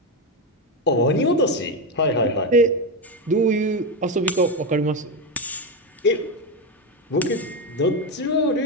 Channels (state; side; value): normal; both; correlation 0.11